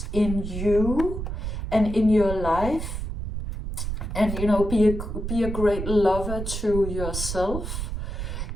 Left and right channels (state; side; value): noise; right; rumble, 5 dB below the sound